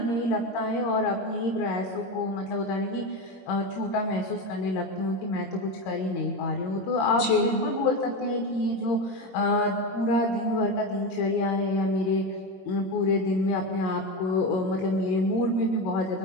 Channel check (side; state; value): right; late; 21 ms